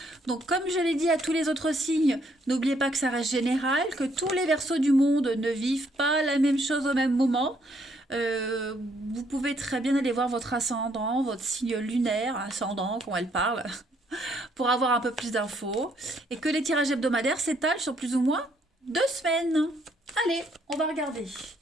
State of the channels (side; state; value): both; normal; correlation 0.69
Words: Donc comme je l'ai dit à tous les autres signes, n'oubliez pas que ça reste général, que tous les Verseaux du monde ne vivent pas la même chose au même moment. Vous pouvez très bien aller voir votre ascendant, votre signe lunaire, ascendant, quand elle parle, pour avoir un peu plus d'infos. Et que les tirages hebdomadaires s'étalent sur plus ou moins 2 semaines. Allez, on va regarder.